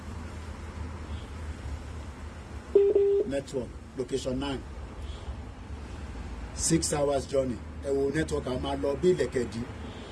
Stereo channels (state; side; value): identical; both; correlation 1.00